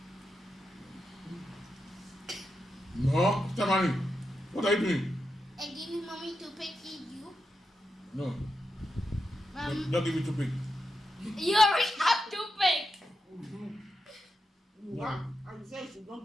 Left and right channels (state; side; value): normal; both; correlation 0.87